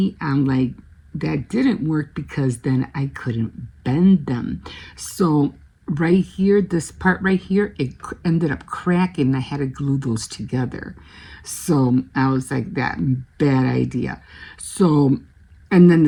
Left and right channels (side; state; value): both; identical; correlation 1.00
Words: I'm like, that didn't work, because then I couldn't bend them. So right here, this part right here, it ended up cracking. I had to glue those together. So I was like, that bad idea. So, and then